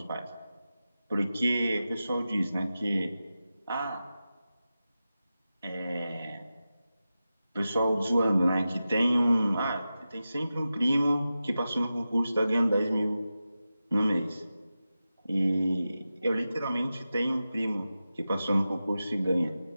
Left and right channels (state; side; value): inverted; both; correlation -0.93